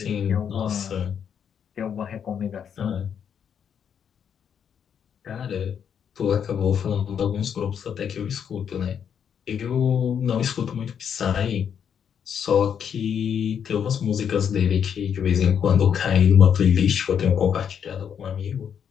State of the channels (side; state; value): right; quieter; 8.0 dB